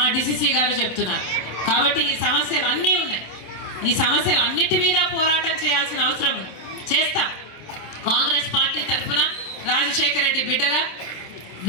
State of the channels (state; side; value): late; right; 27 ms